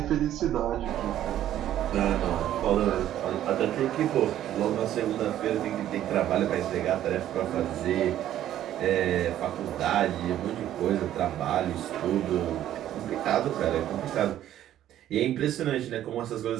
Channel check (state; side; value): quieter; left; 12.1 dB